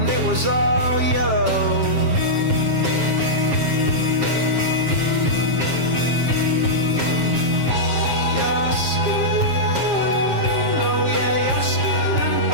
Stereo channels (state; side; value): late; left; 7.4 ms